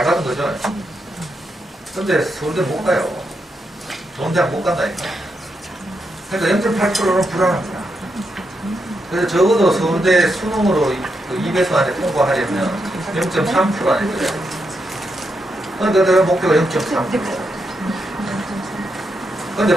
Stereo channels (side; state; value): both; normal; correlation 0.83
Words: 받은 거죠. 근데 서울대 못 가요. 좋은 대학 못 간다니까. 그러니까 0.8%는 불안합니다. 그래서 적어도 서울대 수능으로 2배수 안에 통과하려면 0.3% 안에 들어야 돼요. 그러니까 내가 목표가 0.3%. 근데